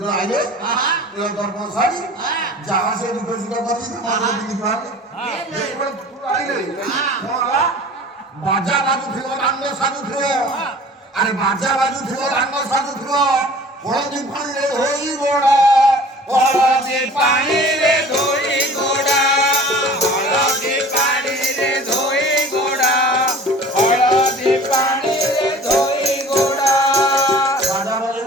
আইলে প্রিয় দর্পণ শাড়ি যাহা সে দুটো সুটা করছি তোমার দিদি পারবে আইলে বাজা বাজু থিব রাঙ্গ সাজু থিব আরে বাজা বাজু থিব রাঙ্গ সাজু থিব হলদি পানিরে ধোই গোড়া হলদি পানিরে ধোই গোড়া হলদি পানিরে ধোই গোড়া হলদি পানিরে ধোই গোড়া বাজা বাজু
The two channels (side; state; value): both; normal; correlation 0.45